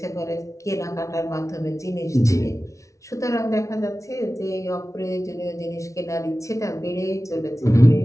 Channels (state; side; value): late; right; 0.15 ms